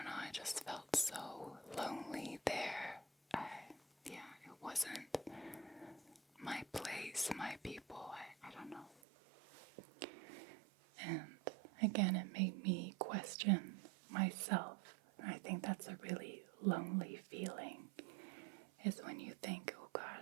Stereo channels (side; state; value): left; drops out; at 9.0 s